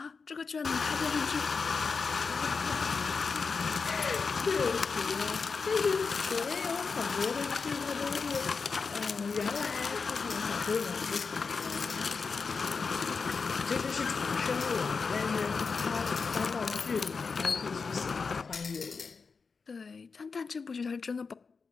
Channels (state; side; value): quieter; right; 4.9 dB